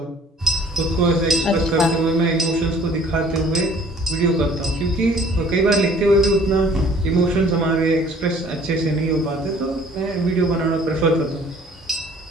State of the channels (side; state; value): both; normal; correlation 0.54